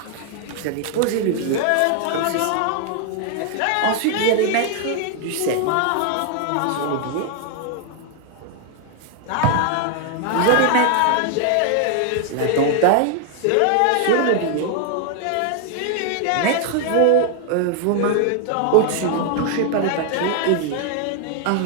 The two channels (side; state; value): both; different; correlation 0.00